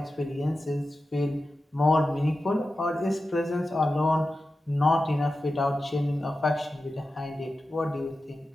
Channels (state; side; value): normal; both; correlation 0.93